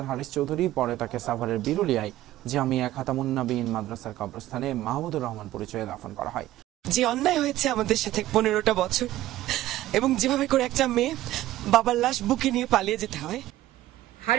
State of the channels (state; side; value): quieter; left; 15.0 dB